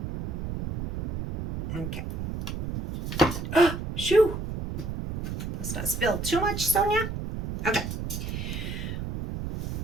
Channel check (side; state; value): right; noise; rumble, 5 dB below the sound